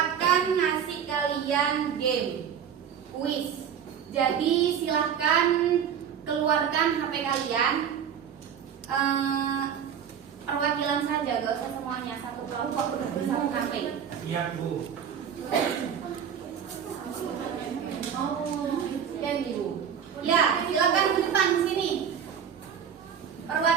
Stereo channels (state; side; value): quieter; left; 8.1 dB